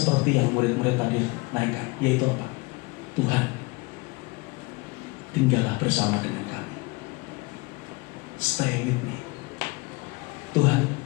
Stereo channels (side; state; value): right; quieter; 25.2 dB